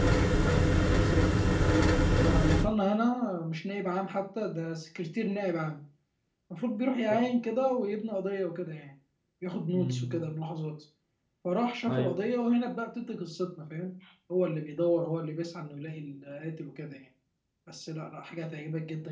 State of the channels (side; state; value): both; identical; correlation 1.00